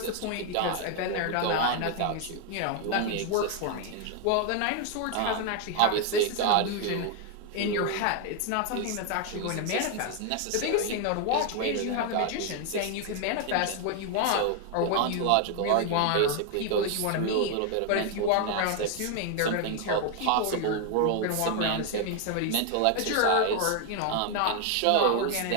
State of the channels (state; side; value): different; both; correlation 0.01